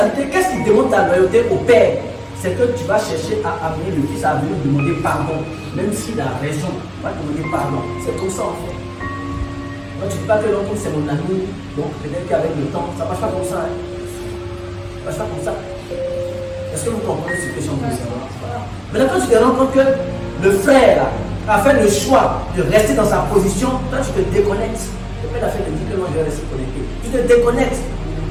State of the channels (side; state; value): both; identical; correlation 1.00